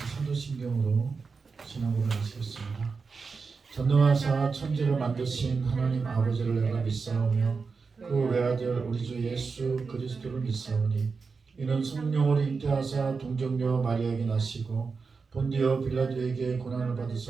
사도신경으로 신앙고백을 하시겠습니다. 전능하사 천지를 만드신 하나님 아버지를 내가 믿사오며 그 외아들 우리 주 예수 그리스도를 믿사오니 이는 성령으로 잉태하사 동정녀 마리아에게 나시고 본디오 빌라도에게 고난을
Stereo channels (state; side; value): quieter; left; 4.8 dB